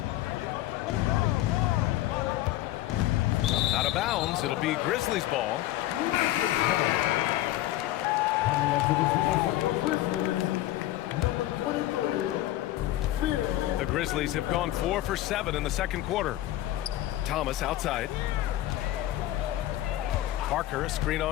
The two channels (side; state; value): right; quieter; 14.9 dB